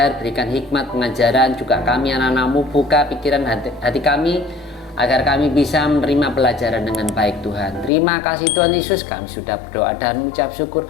berikan hikmat pengajaran, juga kami anak-anak-Mu, buka pikiran hati kami agar kami bisa menerima pelajaran dengan baik Tuhan. Terima kasih Tuhan Yesus, kami sudah berdoa dan mengucap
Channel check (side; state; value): right; drops out; at 7.9 s